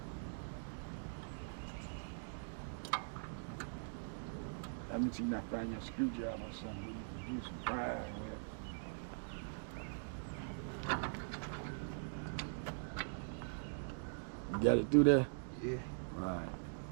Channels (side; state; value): left; silent; digital silence